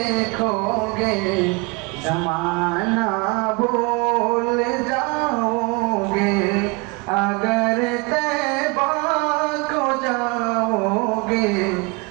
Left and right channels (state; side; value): quieter; left; 28.3 dB